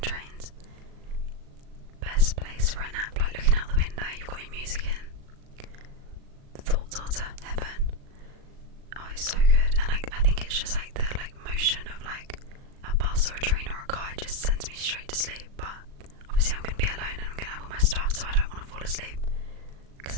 trains. Best place for a nap, like looking out the window, you've got your music in, thoughts are to heaven. Oh, it's so good. And I think it's just like the like motion of like a bus or a train or a car, it just sends me straight to sleep. But obviously I'm going to be alone and I'm going to have all my stuff, so I don't want to fall asleep because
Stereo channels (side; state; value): left; late; 37 ms